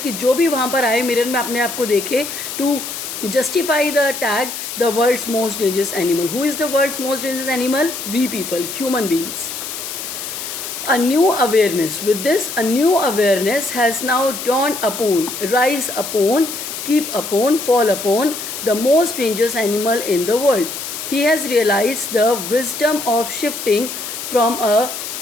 कि जो भी वहाँ पर आए मिरर में अपने आप को देखे, to justify the tag the world's most dangerous animal. Who is the world's most dangerous animal? We people, human beings. A new awareness. With this, a new awareness has now dawned upon, rise upon, keep upon, fall upon the most dangerous animal in the world. He has realized the wisdom of shifting from a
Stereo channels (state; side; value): noise; left; hiss, 7 dB below the sound